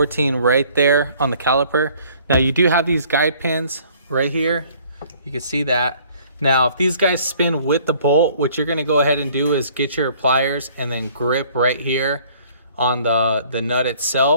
right there on the caliper. Now you do have these guide pins right here. You can see that. Now, if these guys spin with the bolt, what you're going to go ahead and do is get your pliers and then grip right here on the nut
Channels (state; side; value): inverted; both; correlation -0.57